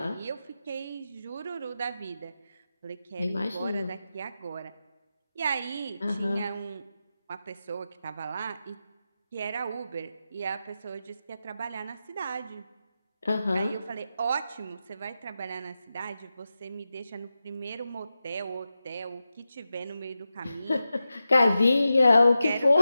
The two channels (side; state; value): both; inverted; correlation -0.91